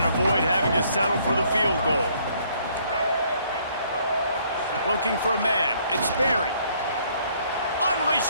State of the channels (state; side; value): inverted; both; correlation -0.65